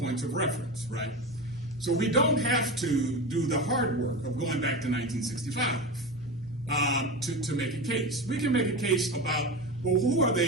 of reference, right? So we don't have to do the hard work of going back to 1965 to make a case. We can make a case about, well, who are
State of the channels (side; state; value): both; normal; correlation 0.24